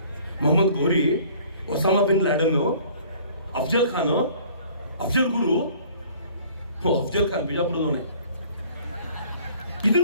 Mohammed Ghori, Osama bin Laden, Afzal Khan, Afzal Guru, Afzal Khan ಬಿಜಾಪುರದವನೇ,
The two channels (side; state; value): both; inverted; correlation -0.53